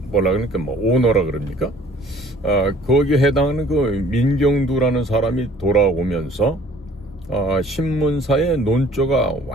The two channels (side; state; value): both; normal; correlation 0.54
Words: 그러니까 오너라 그럽니까? 거기에 해당하는 그 민경두라는 사람이 돌아오면서 신문사의 논조가